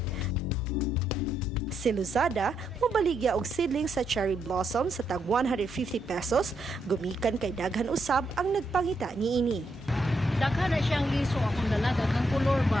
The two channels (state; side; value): normal; both; correlation 0.79